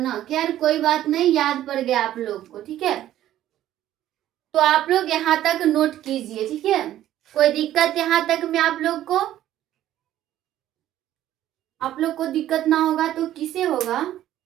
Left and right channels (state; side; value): quieter; left; 12.8 dB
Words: खैर कोई बात नहीं, याद पड़ गया आप लोग को, ठीक है। तो आप लोग यहाँ तक नोट कीजिए, ठीक है। कोई दिक्कत यहाँ तक में आप लोग को? आप लोग को दिक्कत ना होगा तो किसे होगा?